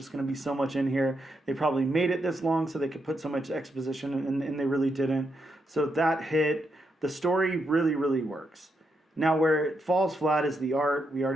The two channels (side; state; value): both; normal; correlation 0.82